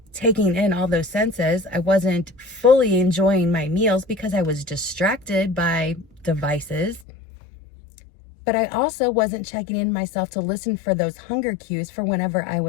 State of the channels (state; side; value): drops out; right; at 7.1 s